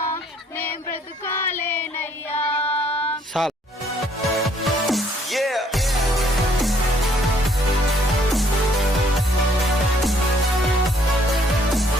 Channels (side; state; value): both; normal; correlation 0.64